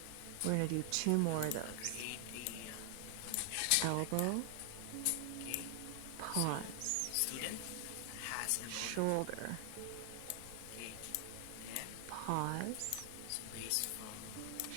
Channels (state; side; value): different; both; correlation 0.00